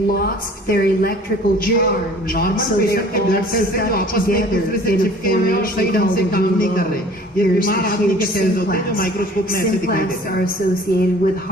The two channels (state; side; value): normal; both; correlation 0.49